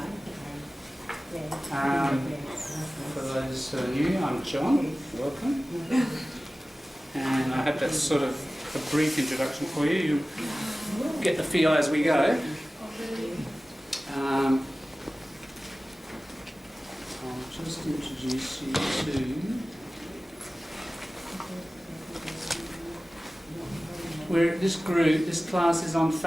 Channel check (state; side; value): normal; both; correlation 0.97